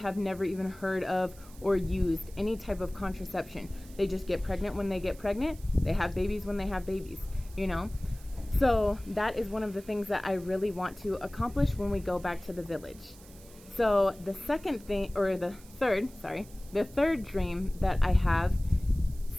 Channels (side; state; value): right; noise; hiss, 22 dB below the sound